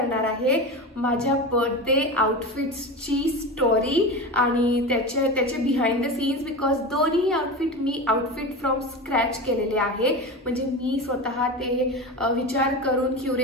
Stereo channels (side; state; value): both; normal; correlation 0.25